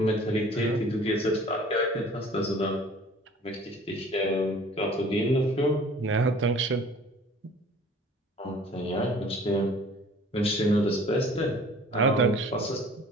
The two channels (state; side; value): normal; both; correlation 0.49